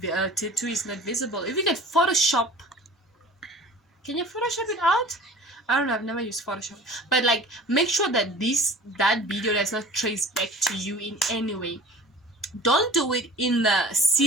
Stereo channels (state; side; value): normal; both; correlation 0.43